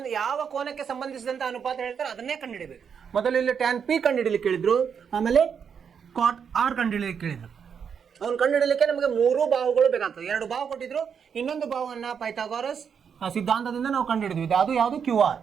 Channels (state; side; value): quieter; left; 7.1 dB